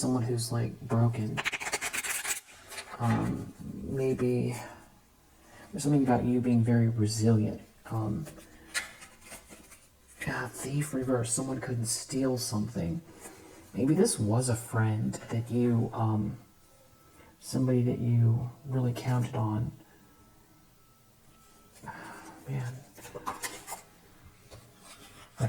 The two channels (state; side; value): identical; both; correlation 1.00